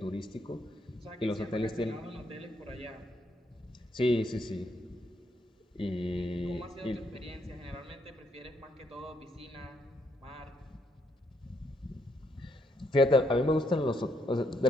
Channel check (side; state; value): both; normal; correlation 0.75